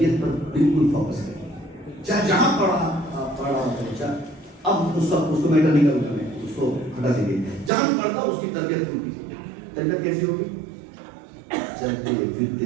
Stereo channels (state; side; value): drops out; left; at 7.7 s